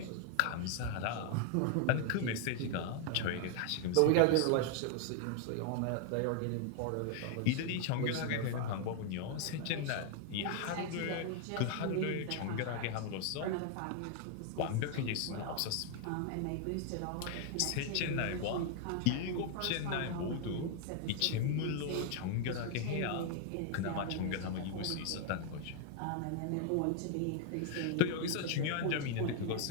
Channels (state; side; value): different; both; correlation 0.00